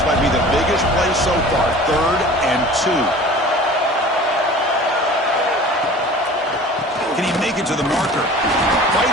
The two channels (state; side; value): normal; both; correlation 0.42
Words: might be the biggest play so far. 3rd and 2. Can he make it to the marker?